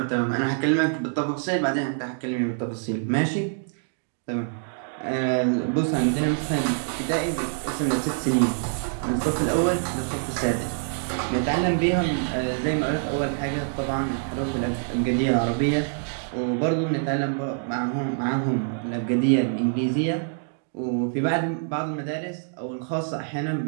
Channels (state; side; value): silent; left; digital silence